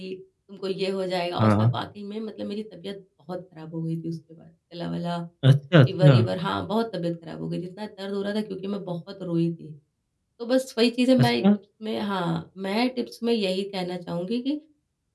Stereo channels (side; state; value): both; identical; correlation 1.00